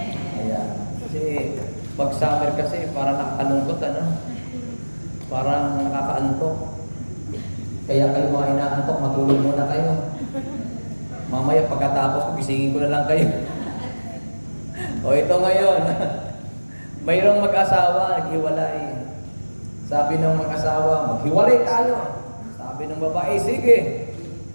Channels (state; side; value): inverted; both; correlation -1.00